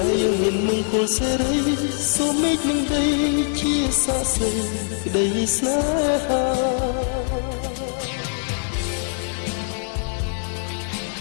េហ៍យើងមានមង្គលសេរីសូមមេឃនឹងដីជាសរសៃក្តីស្នេហា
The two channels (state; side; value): silent; right; digital silence